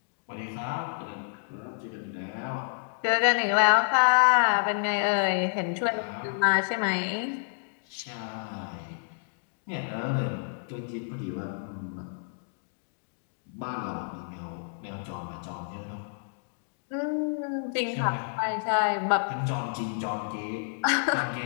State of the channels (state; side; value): silent; right; digital silence